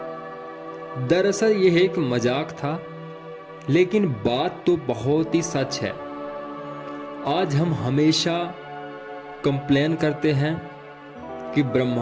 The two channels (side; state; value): both; identical; correlation 1.00